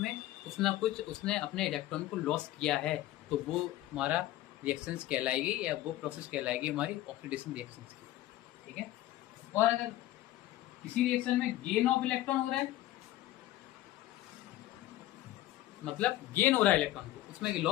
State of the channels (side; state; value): right; quieter; 15.3 dB